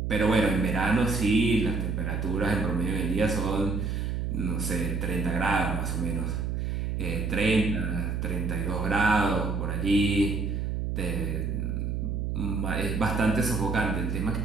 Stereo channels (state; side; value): noise; right; hum, 1 dB below the sound